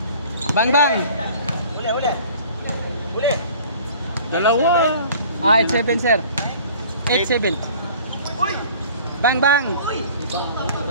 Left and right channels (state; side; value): inverted; both; correlation -0.48